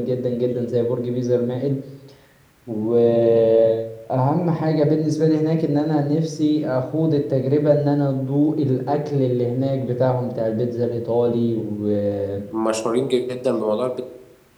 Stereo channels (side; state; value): both; identical; correlation 1.00